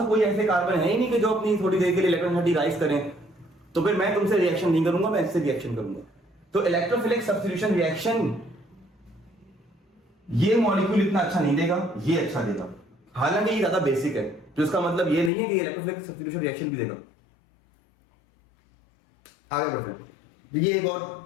कोई ऐसे कार्बन है ही नहीं कि जो अपनी थोड़ी देर के लिए इलेक्ट्रॉनिटी राइज करें, तो फिर मैं तुमसे रिएक्शन नहीं करूंगा, मैं इससे रिएक्शन करूंगा। तो इलेक्ट्रोफिलिक सब्स्टिट्यूशन रिएक्शन ये मॉलिक्यूल इतना अच्छा नहीं देगा, ये अच्छा देगा। हालांकि ये ज्यादा बेसिक है, तो इसका मतलब ये नहीं है कि इलेक्ट्रोफिलिक सब्स्टिट्यूशन रिएक्शन भी देगा। आगे बढ़ते हैं,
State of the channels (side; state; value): right; drops out; at 15.3 s